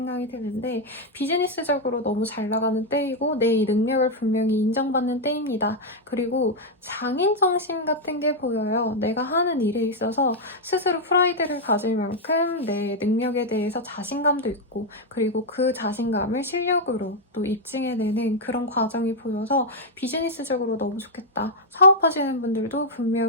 드는데 비즈니스적으로 너무 잘 나가는 때이고 내 능력을 분명히 인정받는 때입니다. 그리고 장인정신 같은 게 보여요. 내가 하는 일에 있어서 스스로 스스로 프라이드를 가질 만큼 내 능력에 대해서 자신감도 있고 그리고 그 자신감을 실력으로 또 입증해내는 그런 과정이 보여서 비즈니스적으로 너무 좋겠다. 사업하시는 분들도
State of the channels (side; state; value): both; normal; correlation -0.01